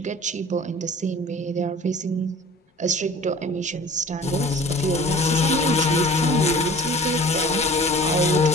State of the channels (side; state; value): both; normal; correlation 0.44